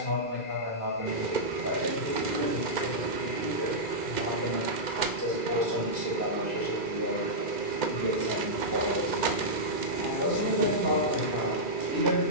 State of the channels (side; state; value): right; late; 2.1 ms